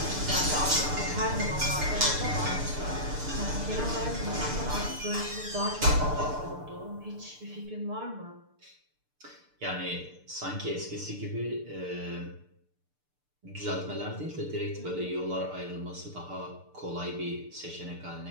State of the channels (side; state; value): left; late; 6.8 ms